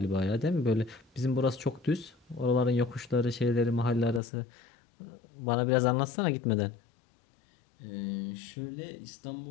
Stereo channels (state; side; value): drops out; right; at 4.2 s